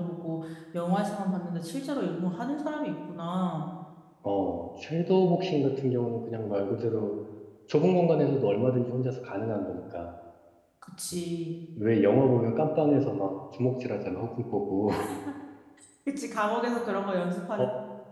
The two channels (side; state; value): both; identical; correlation 1.00